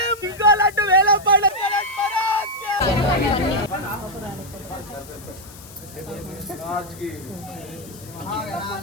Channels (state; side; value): noise; left; hiss, 19 dB below the sound